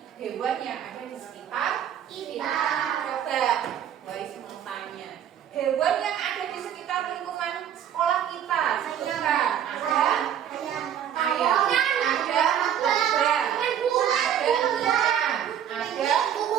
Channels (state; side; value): quieter; left; 9.6 dB